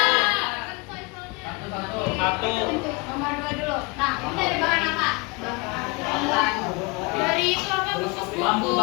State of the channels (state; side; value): quieter; right; 27.9 dB